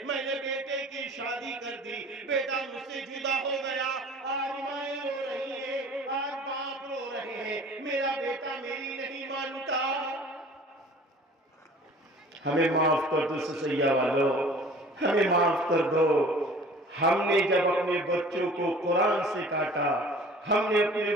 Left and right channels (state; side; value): normal; both; correlation 0.47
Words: میں نے بیٹے کی شادی کر دی، بیٹا مجھ سے جدا ہو گیا. آج مائیں رو رہی ہیں، آج باپ رو رہے ہیں، میرا بیٹا میری نہیں مانتا. ہمیں معاف کر دو سسیہ والو، ہمیں معاف کر دو. ہم نے جب اپنے بچوں کو قرآن سے کاٹا، ہم نے اپنے